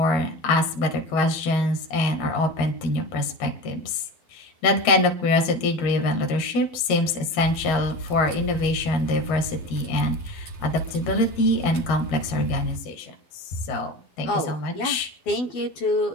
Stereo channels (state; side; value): late; right; 13 ms